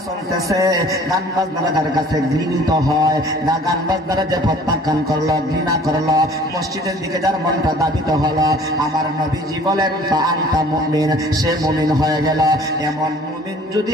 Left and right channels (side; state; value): both; normal; correlation 0.51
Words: চলতেছে, গান বাজনারা যার কাছে ঘৃণিত হয়, গান বাজনারা যে প্রত্যাখ্যান করলো, ঘৃণা করলো, মসজিদের দিকে যার মনটা ধাবিত হলো, আমার নবীজি বলেন আনতা মুমিন, সে মুমিন হয়ে গেল। এমন মুমিন যদি